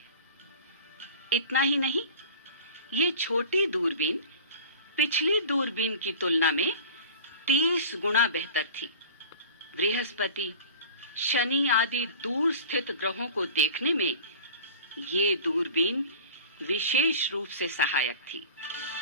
इतना ही नहीं, ये छोटी दूरबीन पिछली दूरबीन की तुलना में 30 गुना बेहतर थी। बृहस्पति, शनि आदि दूर स्थित ग्रहों को देखने में ये दूरबीन विशेष रूप से सहायक थी।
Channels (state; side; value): inverted; both; correlation -0.40